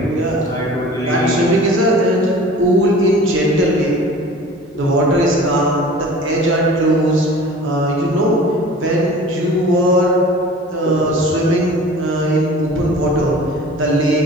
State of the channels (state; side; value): normal; both; correlation 0.43